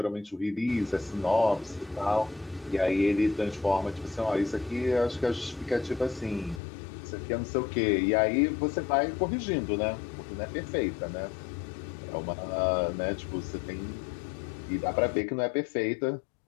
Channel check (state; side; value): drops out; right; at 6.6 s